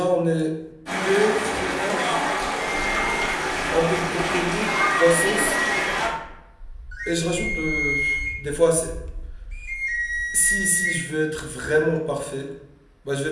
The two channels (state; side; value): identical; both; correlation 1.00